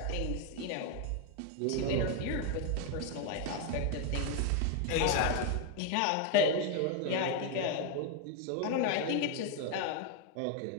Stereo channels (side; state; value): both; different; correlation 0.01